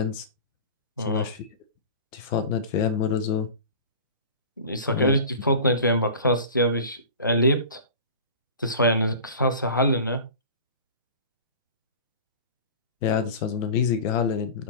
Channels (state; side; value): inverted; both; correlation -0.37